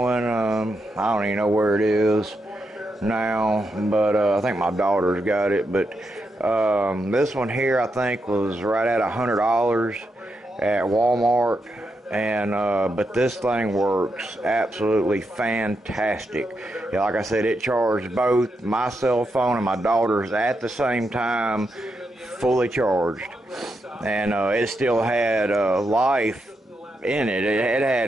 I don't even know where it is now, but I think my daughter's got it. But this one here, I think, was right at $100 at Walmart. And but this thing works absolutely fantastic. Yeah, like I said, it charged both my cell phone and my daughter's at the same time, fully charged, and it still had life in it. It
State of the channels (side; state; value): both; normal; correlation 0.84